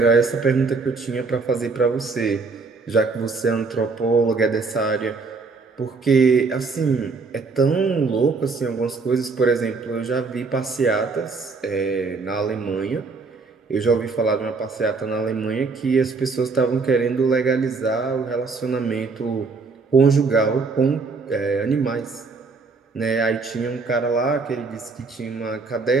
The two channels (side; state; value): left; quieter; 4.3 dB